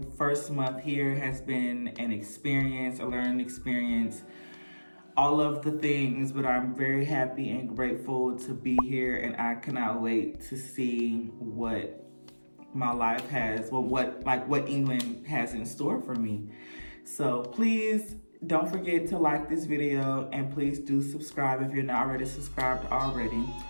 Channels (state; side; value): inverted; both; correlation -1.00